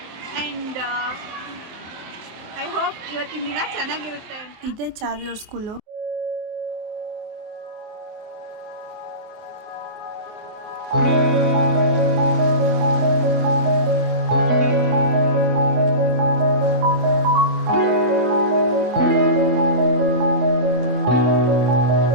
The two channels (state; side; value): late; left; 24 ms